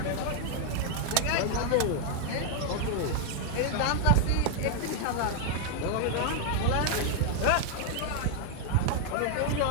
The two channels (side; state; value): both; different; correlation 0.00